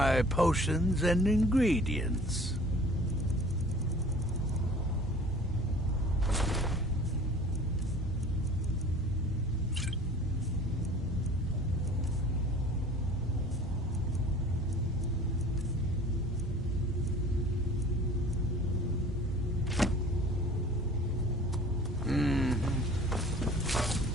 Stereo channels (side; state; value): both; normal; correlation 0.47